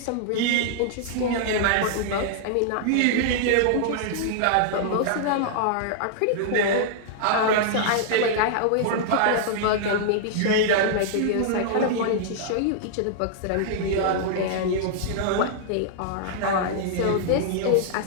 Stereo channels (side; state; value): both; different; correlation -0.01